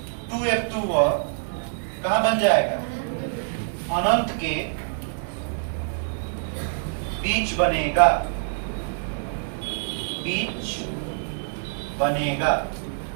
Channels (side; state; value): left; silent; digital silence